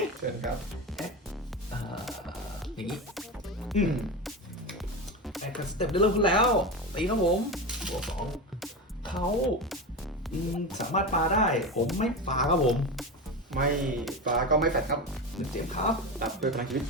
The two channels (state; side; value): normal; both; correlation 0.21